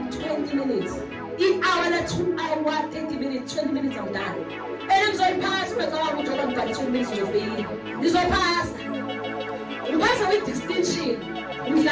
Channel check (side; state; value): both; identical; correlation 1.00